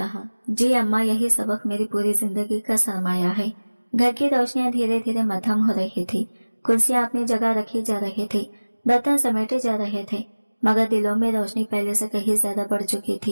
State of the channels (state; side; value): inverted; both; correlation -1.00